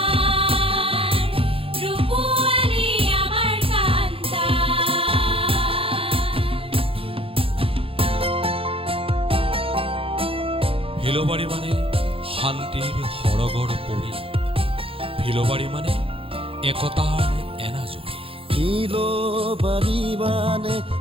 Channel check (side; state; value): left; late; 0.27 ms